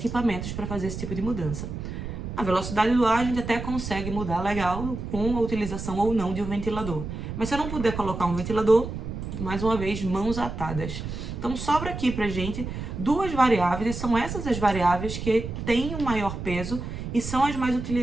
para fazer esse tipo de mudança. A velocidade do ar a gente até consegue mudar legal com a utilização ou não de um ventilador. Mas se eu não puder colocar um ventilador, mais uma vez, mãos atadas. Então sobra aqui pra gente 2 variáveis, e são essas as variáveis que têm o maior peso e são as mais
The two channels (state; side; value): noise; right; rumble, 7 dB below the sound